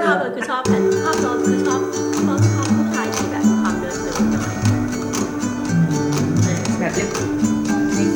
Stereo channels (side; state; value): both; identical; correlation 1.00